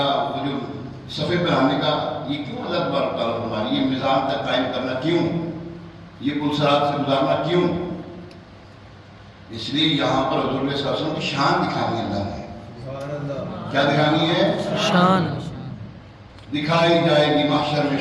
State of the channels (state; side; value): identical; both; correlation 1.00